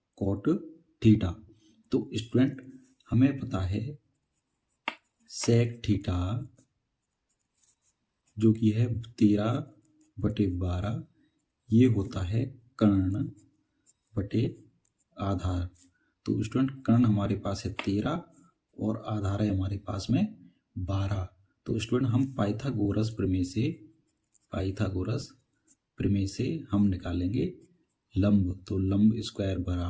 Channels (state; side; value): identical; both; correlation 1.00